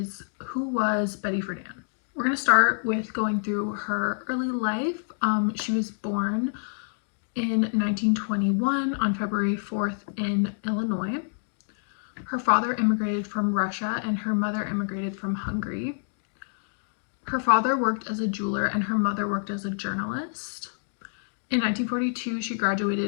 who was Betty Friedan? We're going to start with going through her early life. She was born in 1921 on February 4th in Illinois. Her father immigrated from Russia and her mother immigrated from Hungary. Her father worked as a jeweler and her mother worked as a journalist. In 1942, she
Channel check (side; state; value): right; silent; digital silence